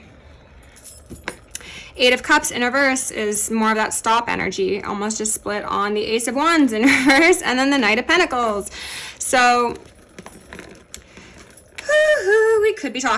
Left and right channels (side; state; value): both; identical; correlation 1.00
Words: Eight of Cups in reverse is more of that stop energy, almost just split on the Ace of Wands in reverse, and then the Knight of Pentacles. So we could be